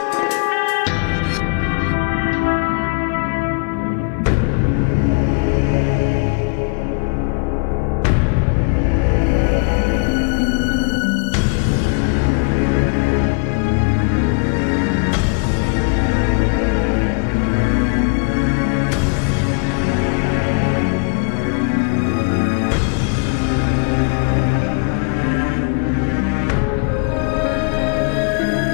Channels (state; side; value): quieter; right; 35.3 dB